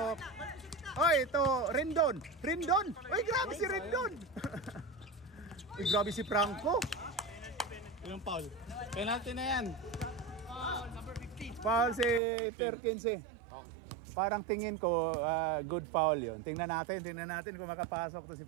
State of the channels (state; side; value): drops out; left; at 12.2 s